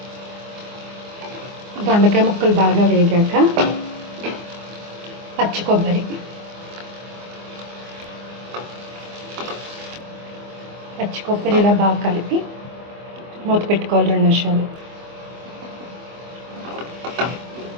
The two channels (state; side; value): late; left; 24 ms